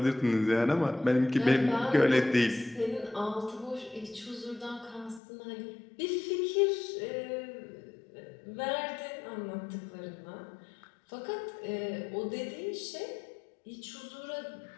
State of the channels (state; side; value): drops out; right; at 5.2 s